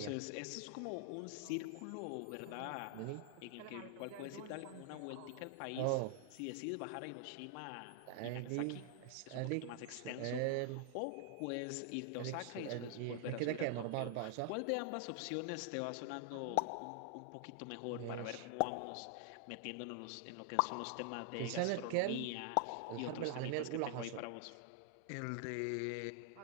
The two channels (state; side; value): different; both; correlation 0.00